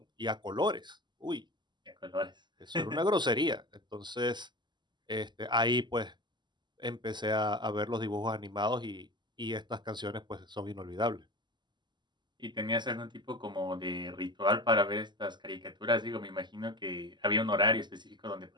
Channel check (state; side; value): late; left; 0.21 ms